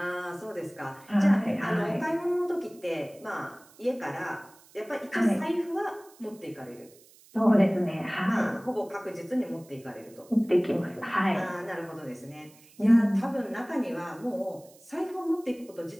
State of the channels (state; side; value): noise; right; hiss, 26 dB below the sound